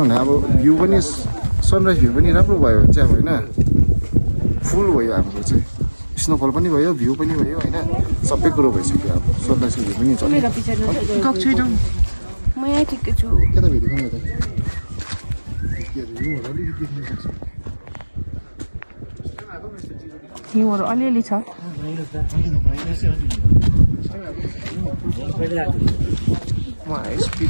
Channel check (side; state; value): both; inverted; correlation -1.00